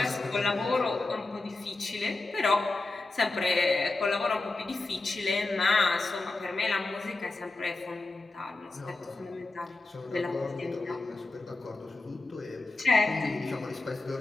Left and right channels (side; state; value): right; quieter; 3.2 dB